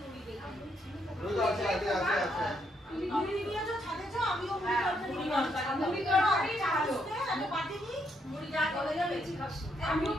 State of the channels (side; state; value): both; normal; correlation 0.75